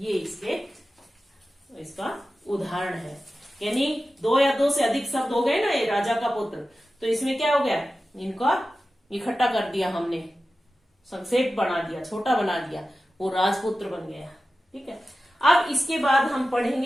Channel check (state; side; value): normal; both; correlation 0.94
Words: इसका उदाहरण है। यानी दो या दो से अधिक शब्द हो गए ना, ये राजा का पुत्र, तो इसमें क्या हो गया, इनका इकट्ठा कर दिया हमने, संक्षेप बना दिया, छोटा बना दिया, वो राजपुत्र बन गया। ठीक है, अब इसके बाद हम